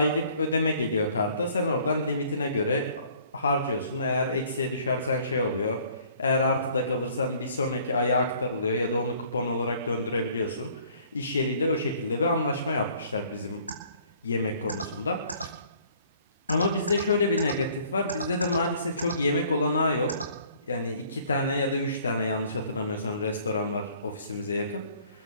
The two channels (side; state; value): both; inverted; correlation -0.57